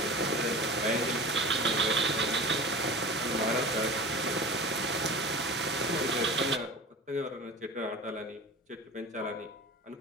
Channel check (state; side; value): normal; both; correlation 0.34